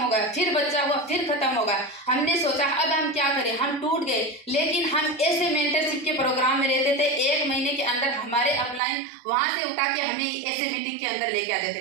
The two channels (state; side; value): drops out; left; at 8.8 s